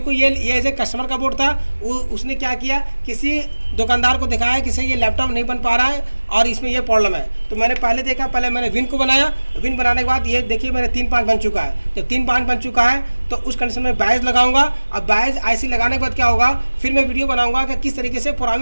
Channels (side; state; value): both; inverted; correlation -1.00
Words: ये एज ए कस्टमर का बोर्ड था, उसने क्या किया, किसी दुकानदार को दिखाया कि सही ये लैपटॉप नहीं बन पा रहा है और इसमें ये प्रॉब्लम है। तो मैंने पहले देखा, पहले मैंने विन को बनाया, विन बनाने के बाद ये देखिए मेरे 3-5 बन चुका है। जब 3-5 बन चुका है तो उस कंडीशन में बायस लगाऊंगा। अब बायस आईसी लगाने के बाद क्या होगा, फिर मैं वीडियो बनाऊंगा कि किस तरीके से